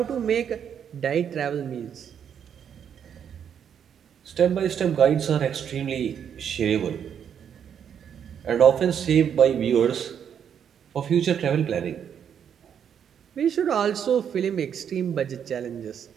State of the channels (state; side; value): quieter; left; 8.3 dB